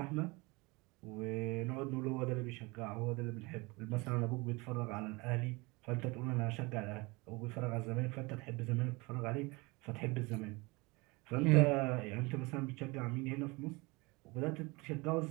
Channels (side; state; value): left; quieter; 25.4 dB